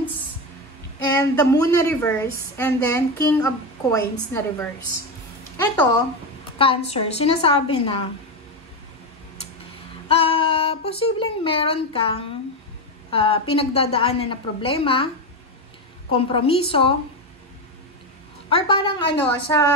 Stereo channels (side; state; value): both; normal; correlation 0.13